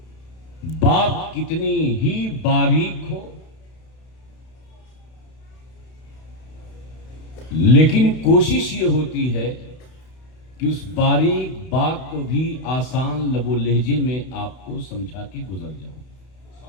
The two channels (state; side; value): late; right; 32 ms